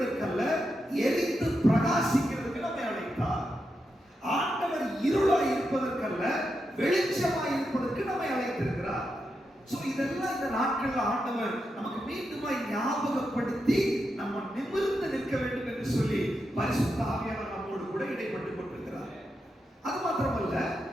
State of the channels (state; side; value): normal; both; correlation 0.86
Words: எரிந்து பிரகாசிக்கிறதுக்கு நம்மை அழைத்தார். ஆண்டவர் இருளாய் இருப்பதற்கல்ல, வெளிச்சமாய் இருப்பதற்கு நம்மை அழைத்திருக்கிறார். இதெல்லாம் இந்த நாட்களில் ஆண்டவர் நமக்கு மீண்டுமாய் ஞாபகப்படுத்தி நம்ம நிமிர்ந்து நிற்க வேண்டும் என்று சொல்லி பரிசுத்த ஆவியானவர் நம்மோடு கூட இடைப்பட்டுக் கொண்டிருக்கிறார். அது மாத்திரமல்ல,